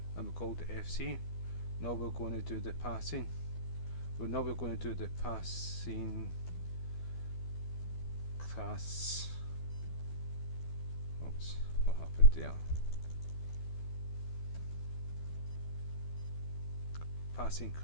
and we called it FC. Now we're going to do the passing. Now we're going to do the passing class. Oops, what happened there? Passing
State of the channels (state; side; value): late; right; 12 ms